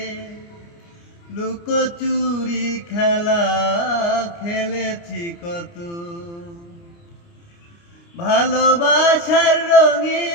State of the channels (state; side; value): late; right; 29 ms